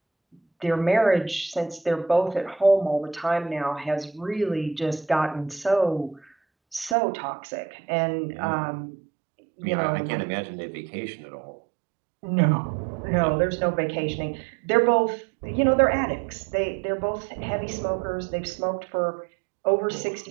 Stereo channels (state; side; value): drops out; left; at 7.0 s